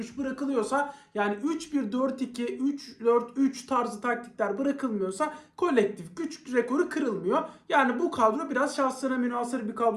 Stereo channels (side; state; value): both; identical; correlation 1.00